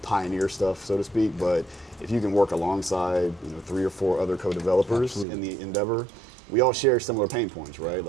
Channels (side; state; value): left; drops out; at 5.2 s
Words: pioneer stuff, so to speak, but if you can work alongside, you know, 3 or 4 other co-developers in the endeavor, we all share similar pain points, right?